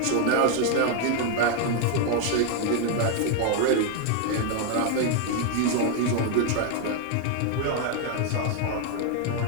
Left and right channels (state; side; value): different; both; correlation 0.01